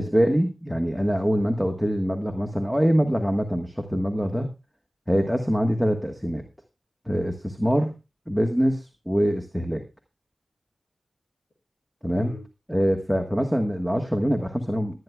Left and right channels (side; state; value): both; normal; correlation 0.98